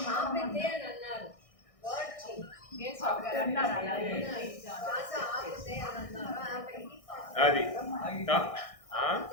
ఆపితే అని అన్నారు. అది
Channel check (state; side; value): late; right; 1.6 ms